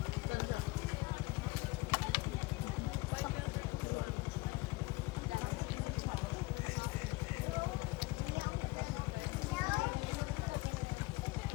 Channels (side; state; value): right; quieter; 21.8 dB